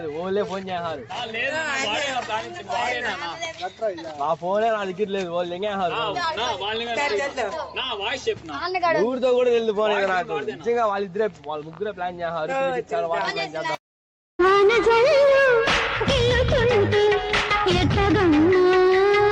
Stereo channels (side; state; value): both; identical; correlation 1.00